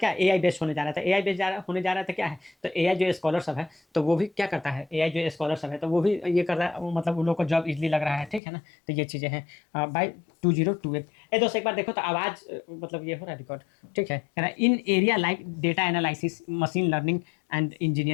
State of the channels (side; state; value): right; drops out; at 8.4 s